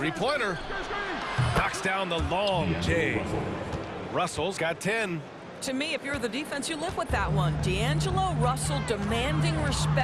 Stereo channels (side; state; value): both; identical; correlation 1.00